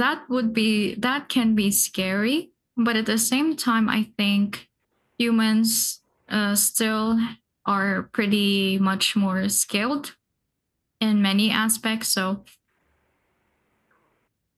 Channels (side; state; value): both; identical; correlation 1.00